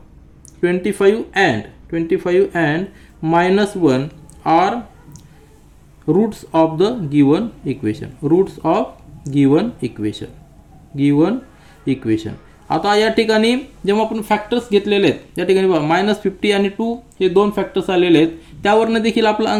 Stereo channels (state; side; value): identical; both; correlation 1.00